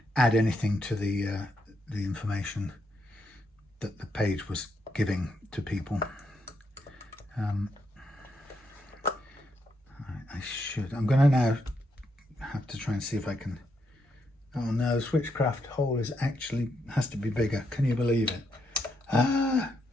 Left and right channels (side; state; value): both; normal; correlation 0.79